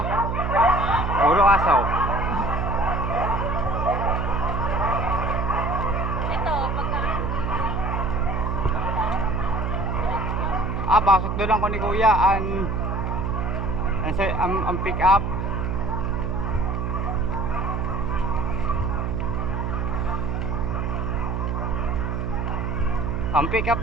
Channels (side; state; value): right; noise; hum, 1 dB below the sound